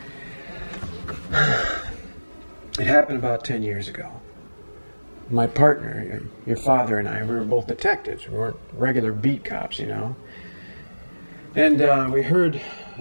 It happened about 10 years ago. My partner, your father and I, we were both detectives. We weren't regular beat cops, you know. And we heard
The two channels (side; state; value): both; inverted; correlation -1.00